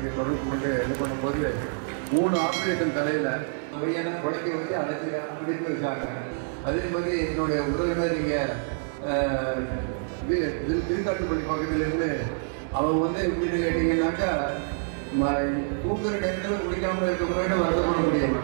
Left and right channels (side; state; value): left; silent; digital silence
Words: தொடர்பு கொண்டு இது பண்ணும்போது 3 ஆபரேஷன் தலையில பையனை குழைக்க வச்சு அடைச்சி வச்சாங்க. அதே மாதிரி என்னுடைய உறவினர் இங்கே திருக்காட்டுப்பள்ளி பக்கத்துல இருந்து அவங்க வந்து எப்படின்னு கேட்டீங்கன்னாக்கா தூக்குற நேரத்தில் குடிக்காம இருக்க முன்னாடி வருத்தப்பட முடியாம